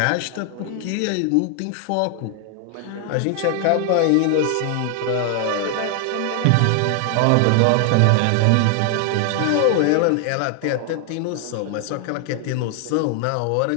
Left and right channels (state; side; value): different; both; correlation 0.00